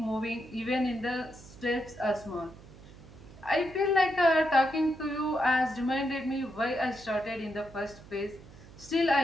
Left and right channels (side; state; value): right; noise; hum, 19 dB below the sound